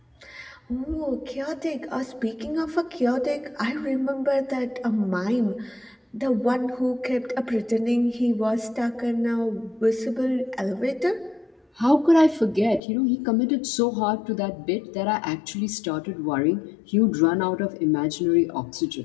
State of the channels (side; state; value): right; drops out; at 12.8 s